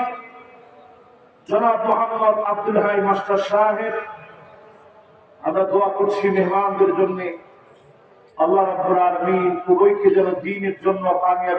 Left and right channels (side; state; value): both; identical; correlation 1.00